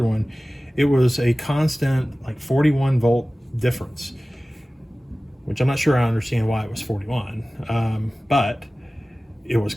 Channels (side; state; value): both; normal; correlation 0.97